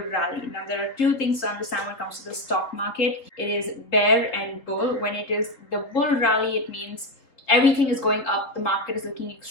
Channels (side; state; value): right; late; 4.0 ms